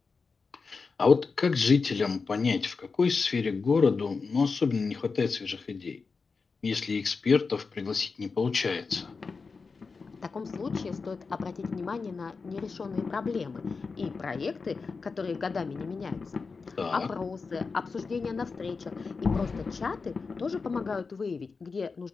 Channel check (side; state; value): right; quieter; 4.6 dB